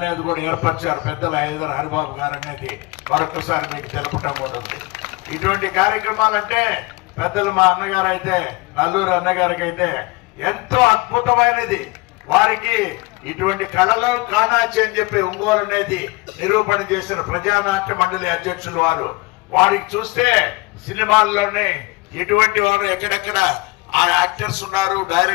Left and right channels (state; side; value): quieter; right; 24.3 dB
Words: కూడా ఏర్పరిచారు పెద్దల ఇద్దరు హరిబాబు గారు అనేది మరొకసారి మీకు తెలపటం కూడా ఉంది. ఇటువంటి కార్యక్రమాలంటే పెద్దలు మా అన్నగారు అయితే నల్లూరు అన్నగారికి అయితే ఎంతో అద్భుతమైనది. వారికి ఇటువంటి కళలు కానాచి అని చెప్పి ఒంగోలు అనేది నిరూపణ చేసిన ప్రజానాట్య మండలి అధ్యక్షులు వారికి చూస్తే సినిమాల్లోనే ఎటువంటి వారు ఎక్కడెక్కడ ఆ యాక్టర్స్ ఉన్నారు,